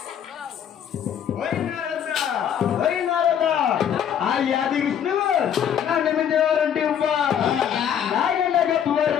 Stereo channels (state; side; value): quieter; right; 9.0 dB